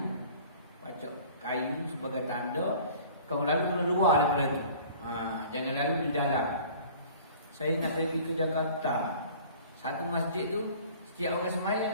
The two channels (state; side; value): inverted; both; correlation -0.47